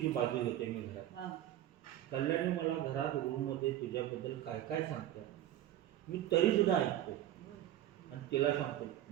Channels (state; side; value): quieter; left; 12.7 dB